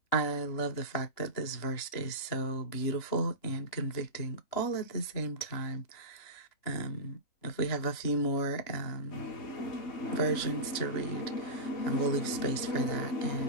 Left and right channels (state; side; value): late; right; 3.0 ms